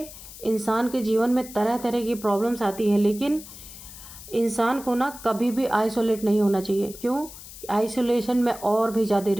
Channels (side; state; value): left; noise; hiss, 15 dB below the sound